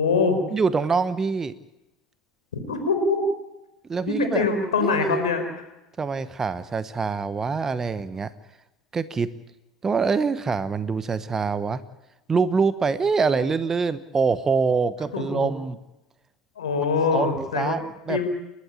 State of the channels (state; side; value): normal; both; correlation 0.50